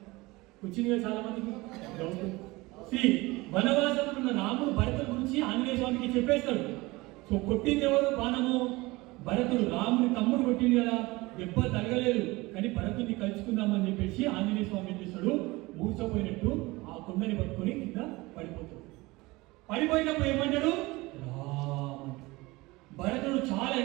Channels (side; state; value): left; quieter; 21.9 dB